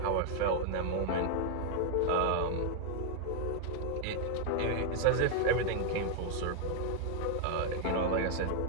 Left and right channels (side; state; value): both; different; correlation 0.00